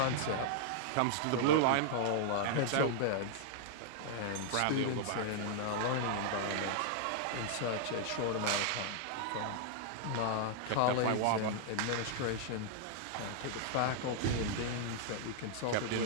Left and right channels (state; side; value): different; both; correlation -0.01